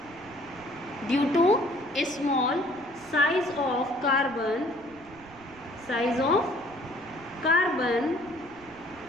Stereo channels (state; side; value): noise; right; rumble, 24 dB below the sound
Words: Due to small size of carbon.